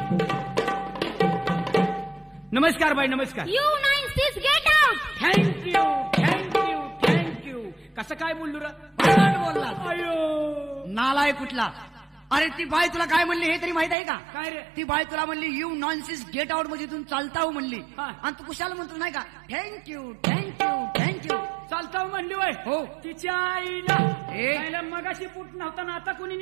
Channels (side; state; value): left; drops out; at 14.0 s